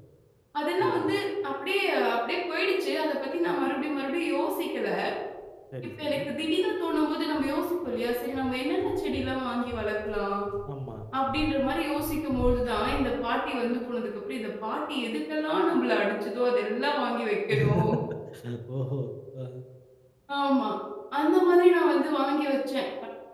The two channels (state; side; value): identical; both; correlation 1.00